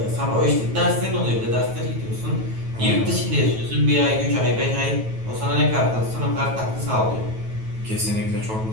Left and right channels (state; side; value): late; left; 9.2 ms